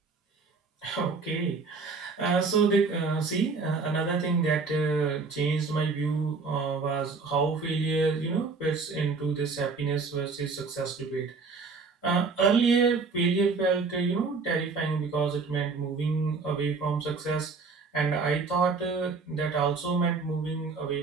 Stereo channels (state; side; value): quieter; left; 4.5 dB